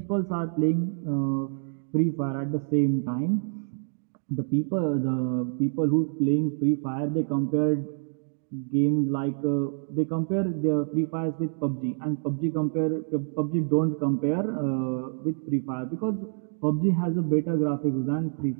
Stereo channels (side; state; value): left; silent; digital silence